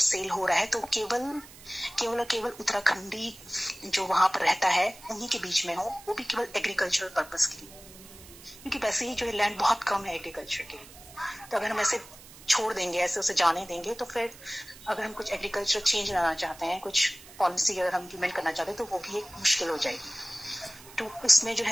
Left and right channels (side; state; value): right; noise; hiss, 19 dB below the sound